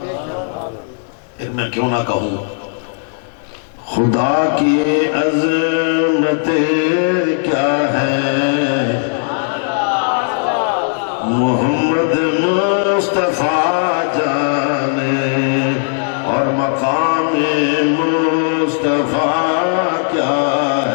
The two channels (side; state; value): right; silent; digital silence